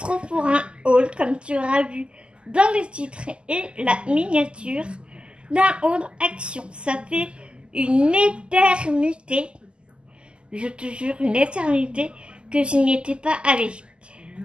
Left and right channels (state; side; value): late; left; 0.050 ms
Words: pour un haul, comme tu auras vu dans le titre et la miniature, d'un haul action. Ça fait une éternité, je te jure, une éternité que je n'y étais pas allée.